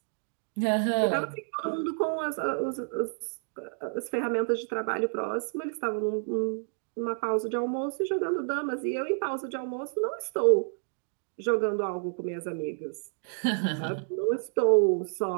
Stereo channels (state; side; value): silent; left; digital silence